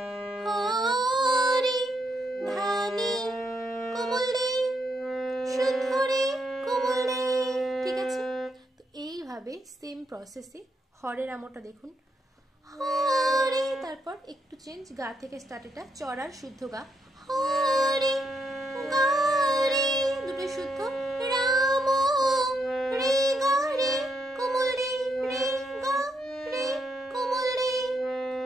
হরে ধানি কোমল রে শুদ্ধ রে কোমল রে। ঠিক আছে, তো এইভাবে সেম প্রসেসে হরের আমটা দেখুন, হরে, তারপর একটু চেঞ্জ, গা থেকে স্টার্ট, এটা চড়ার শুদ্ধ গা, হরে গা রে দুটো শুদ্ধ, রাম রে গা রে কোমল রে, রে গা রে কোমল রে,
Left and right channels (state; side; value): normal; both; correlation 0.79